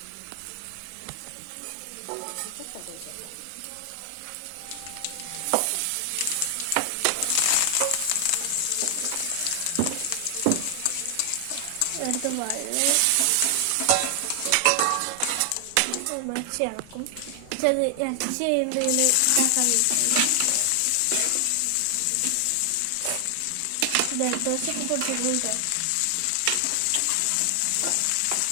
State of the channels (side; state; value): both; different; correlation 0.00